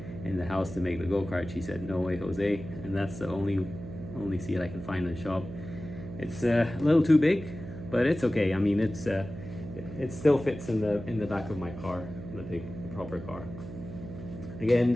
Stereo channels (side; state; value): right; noise; hum, 11 dB below the sound